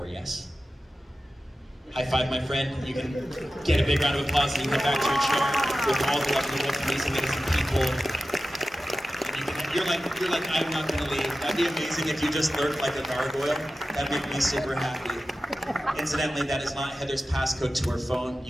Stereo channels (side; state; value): both; normal; correlation 0.94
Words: yes? High five, my friend. You can get a big round of applause and you come back to your chair with all the lovely, amazing people. You're like, I'm not gonna leave. That'd be amazing if you just lurked like a gargoyle. That'd make me super happy. Incidentally, that is not Heather's passcode to her phone,